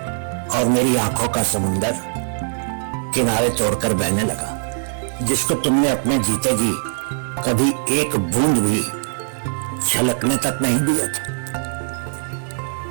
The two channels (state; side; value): silent; left; digital silence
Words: और मेरी आंखों का समुंदर किनारे तोड़कर बहने लगा, जिसको तुमने अपने जीते जी कभी एक बूंद भी छलकने तक नहीं दिया था।